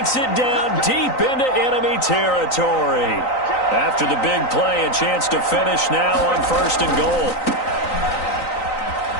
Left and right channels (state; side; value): late; right; 3.9 ms